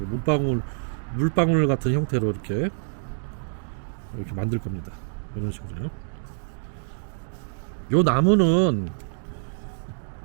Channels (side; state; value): left; silent; digital silence